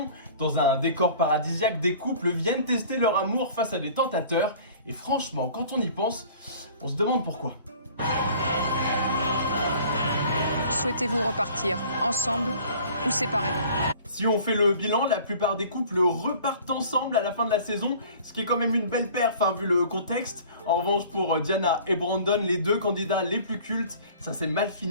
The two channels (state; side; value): inverted; both; correlation -0.48